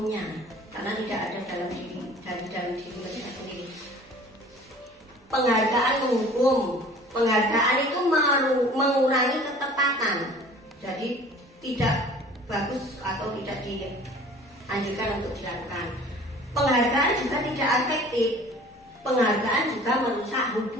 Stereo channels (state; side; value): normal; both; correlation 0.47